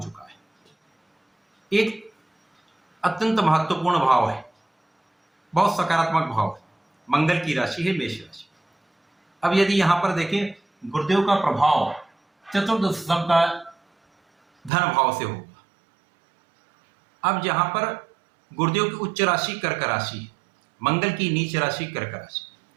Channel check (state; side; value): drops out; left; at 14.7 s